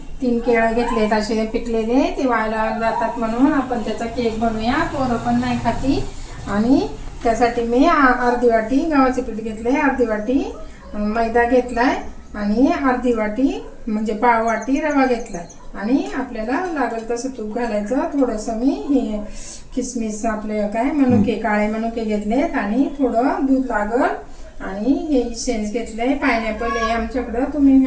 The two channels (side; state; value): both; identical; correlation 1.00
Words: 3 केळं घेतलेत असे पिकलेले। ते वाळायला जातात म्हणून आपण त्याचा केक बनवूया। पोरं पण नाही खाती। आणि त्यासाठी मी अर्धी वाटी गव्हाचे पीठ घेतले, अर्धी वाटी मैदा घेतलाय आणि अर्धी वाटी म्हणजे पाव वाटी रवा घेतलाय। आणि आपल्याला लागेल तसं तूप घालायचं। थोडंसं मी हे किसमिस आपले काय मनुके काळे मनुके घेतलेत आणि थोडं दूध लागल। आणि हे इसेन्स घेतलंय पायनॅपल आहे आमच्याकडं, तुम्ही